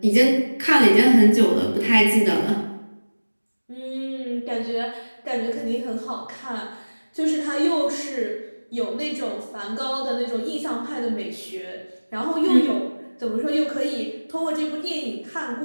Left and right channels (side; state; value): both; inverted; correlation -1.00